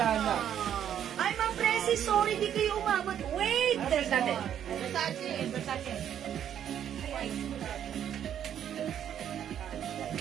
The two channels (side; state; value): left; quieter; 9.7 dB